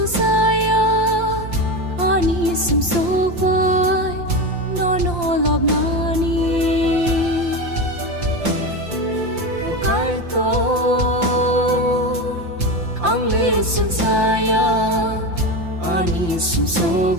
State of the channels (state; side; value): late; left; 5.8 ms